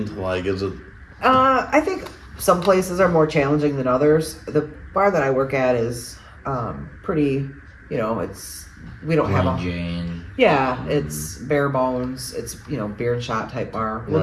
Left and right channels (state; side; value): identical; both; correlation 1.00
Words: Like, is it? I think some places are more challenging than others. The bar that I work at is pretty, we don't have a... Jane. Yeah, it's bare bones. It's, beer and shot type bar. We'll